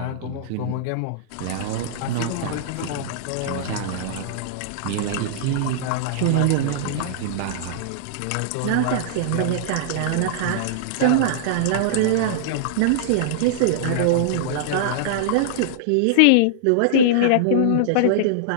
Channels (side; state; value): both; different; correlation -0.02